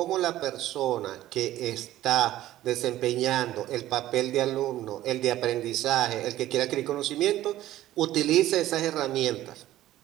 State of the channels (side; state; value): left; quieter; 14.4 dB